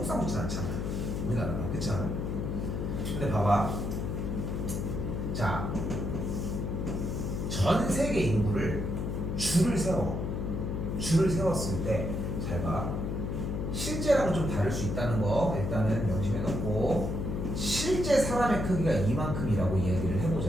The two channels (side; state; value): left; noise; hum, 2 dB below the sound